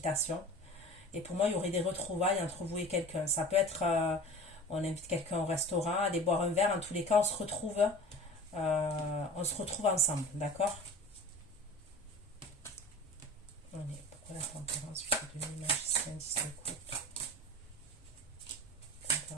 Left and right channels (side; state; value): both; normal; correlation 0.38